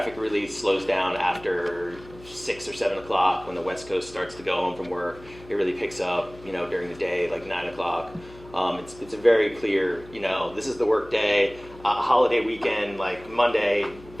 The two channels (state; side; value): noise; left; hum, 20 dB below the sound